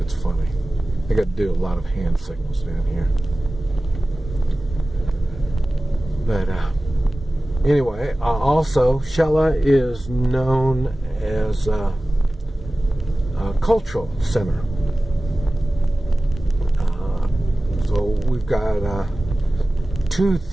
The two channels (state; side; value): normal; both; correlation 0.97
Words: funny. I got to do a lot of hand signals down here. But anyway, also Shella is known as a cultural center. So we've got 2